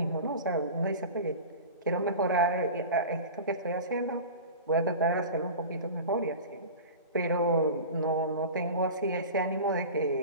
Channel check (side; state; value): both; inverted; correlation -0.33